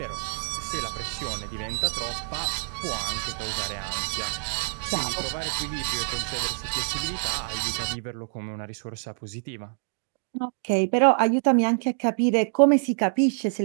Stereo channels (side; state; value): left; silent; digital silence